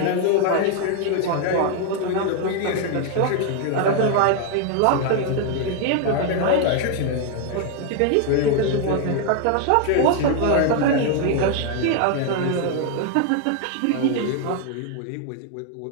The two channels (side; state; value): both; different; correlation 0.00